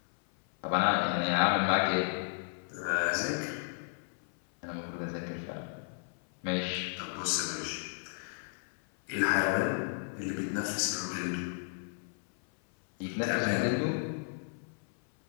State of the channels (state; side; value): silent; right; 56 dB below the other